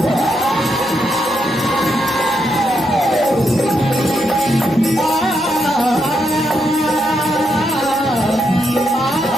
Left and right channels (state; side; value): noise; left; rumble, 29 dB below the sound